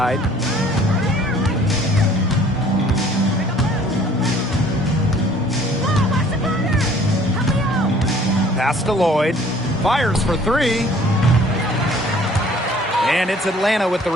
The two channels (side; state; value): both; normal; correlation 0.55